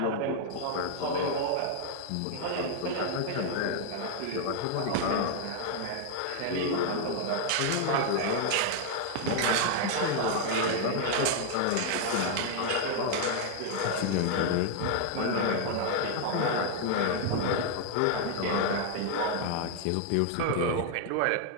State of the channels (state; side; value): different; both; correlation 0.00